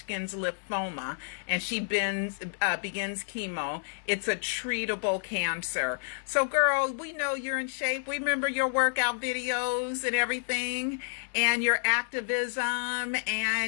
lymphoma, and she begins chemo. It's a treatable cancer. So, girl, we know you're in shape. We remember your workout videos and everything, and your activism,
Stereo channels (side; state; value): right; silent; 58 dB below the other